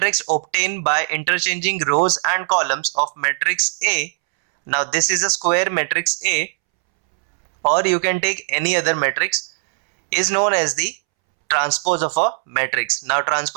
obtained by interchanging rows and columns of matrix A. Now this is a square matrix A, or you can take any other matrix, is known as the transpose of a matrix. Now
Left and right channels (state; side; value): silent; left; 66 dB below the other